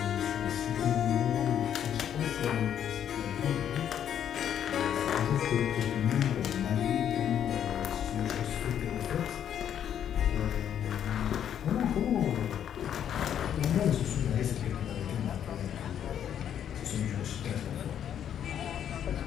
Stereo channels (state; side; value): quieter; right; 9.5 dB